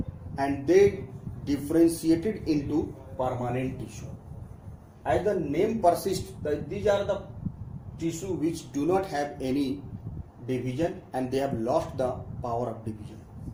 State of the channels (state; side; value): identical; both; correlation 1.00